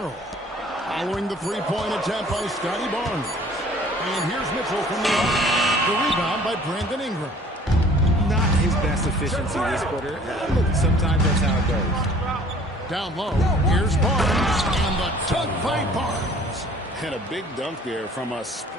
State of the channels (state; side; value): normal; both; correlation 0.52